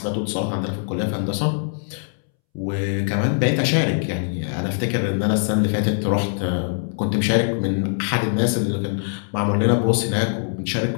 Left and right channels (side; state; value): right; silent; 64 dB below the other